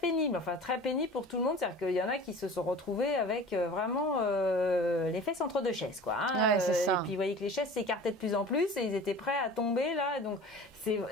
Enfin très pénible pour tout le monde, c'est-à-dire qu'il y en a qui se sont retrouvés avec vraiment les fesses entre deux chaises, quoi. Et puis vous voyez que les chaises s'écartaient de plus en plus et ils étaient prêts à tomber là. Donc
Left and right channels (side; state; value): both; normal; correlation 0.40